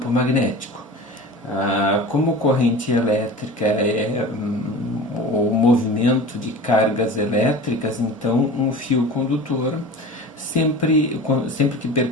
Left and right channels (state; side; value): normal; both; correlation 0.35